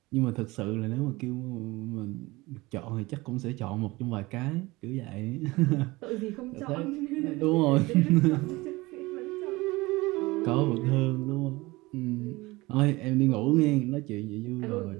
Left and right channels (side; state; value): left; quieter; 21.5 dB